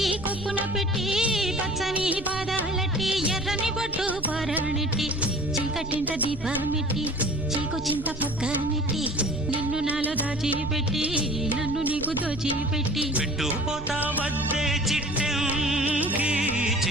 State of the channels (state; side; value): noise; right; rumble, 13 dB below the sound